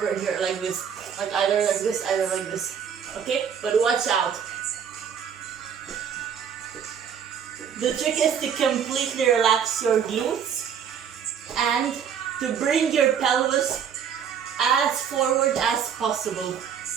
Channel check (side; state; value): left; quieter; 7.8 dB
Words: here like this. Like either like this, either like this. Okay? But watch out. The trick is to completely relax your glutes and to bring your pelvis as forward as possible.